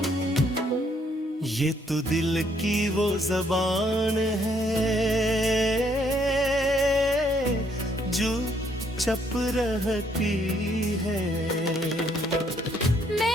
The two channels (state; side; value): normal; both; correlation 0.69